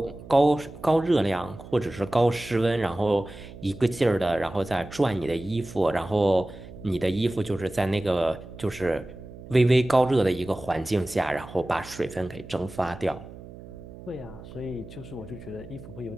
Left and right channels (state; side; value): noise; right; hum, 16 dB below the sound